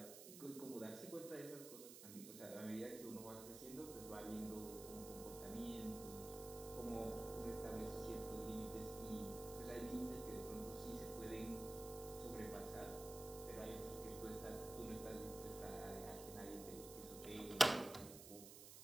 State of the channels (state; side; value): noise; right; hiss, 11 dB below the sound